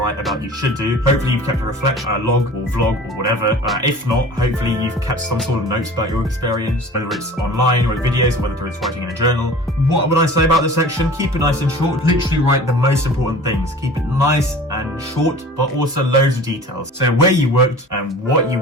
about, you should do. Hopefully you've kept a reflection, a log or vlog or whatever. If not, hopefully you've kept some sort of notes about your work experience, whether it's online or videos, or whether it's writing in a journal. What would I say about this section? Keep it nice and short. Literally write the most important things. Keep it nice and short, but also loads of details. So where you worked, and what you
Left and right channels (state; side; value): normal; both; correlation 0.42